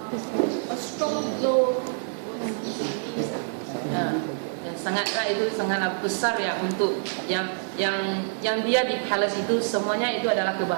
A strong blow. sangatlah itu sangatlah besar ya untuk yang dia di palace itu semuanya itu adalah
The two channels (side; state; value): left; silent; digital silence